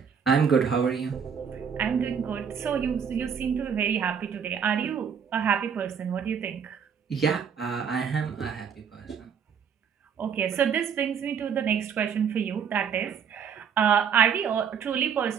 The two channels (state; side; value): quieter; left; 7.1 dB